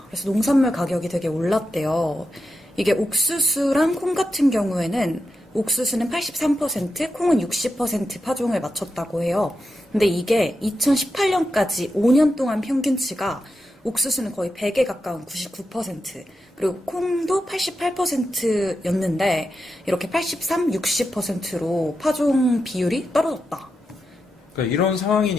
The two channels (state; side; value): normal; both; correlation 0.88